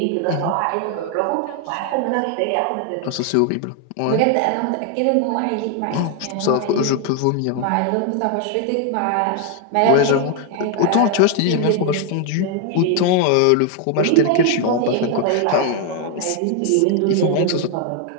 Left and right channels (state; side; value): different; both; correlation 0.00